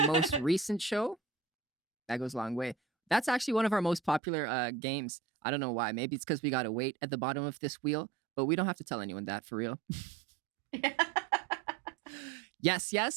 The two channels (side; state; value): left; drops out; at 4.2 s